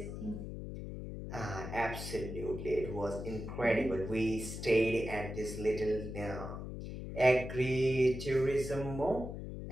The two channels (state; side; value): noise; left; hum, 7 dB below the sound